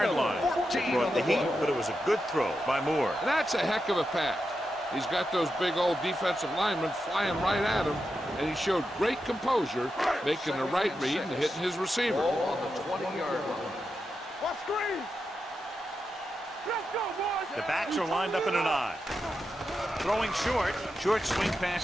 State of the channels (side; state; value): both; normal; correlation 0.88